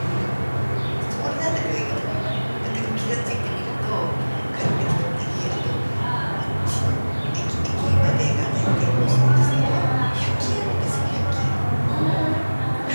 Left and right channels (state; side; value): inverted; both; correlation -1.00